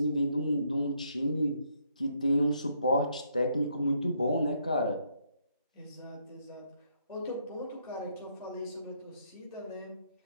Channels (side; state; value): both; inverted; correlation -0.73